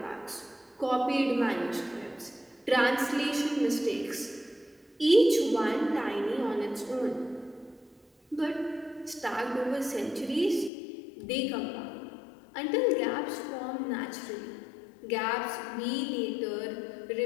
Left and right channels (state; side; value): drops out; right; at 10.7 s